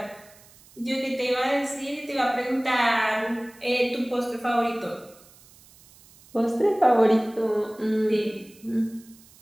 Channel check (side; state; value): right; noise; hiss, 25 dB below the sound